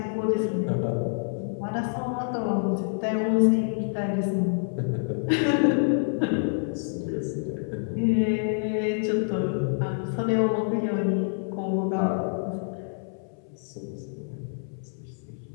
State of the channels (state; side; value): silent; right; 60 dB below the other